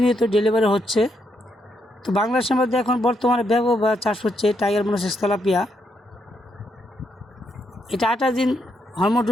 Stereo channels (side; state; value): both; normal; correlation 0.78